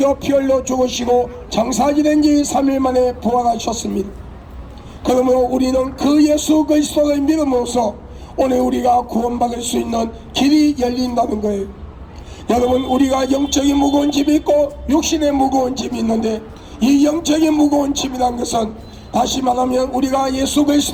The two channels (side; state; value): both; identical; correlation 1.00